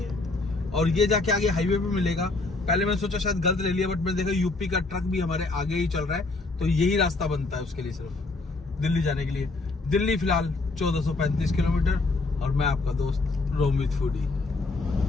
और ये जाके आगे हाईवे पे मिलेगा। पहले मैं सोचा शायद गलत ले लिया, बट मैंने देखा यूपी का ट्रक भी हमारे आगे ही चल रहा है, तो यही रास्ता बनता है उसके लिए, सिर्फ दिल्ली जाने के लिए। दिल्ली फिलहाल 1435 किलोमीटर, और मैं आपका दोस्त रोमित फूडी।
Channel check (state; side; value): quieter; right; 3.4 dB